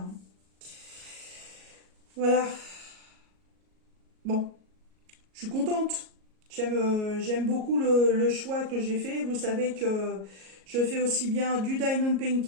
Voilà. Bon, je suis contente. J'aime beaucoup le choix que j'ai fait. Vous savez que je fais aussi bien du diamond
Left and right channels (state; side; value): late; left; 37 ms